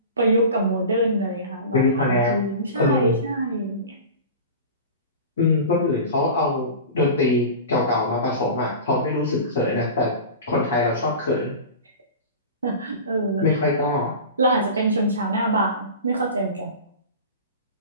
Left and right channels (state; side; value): inverted; both; correlation -0.33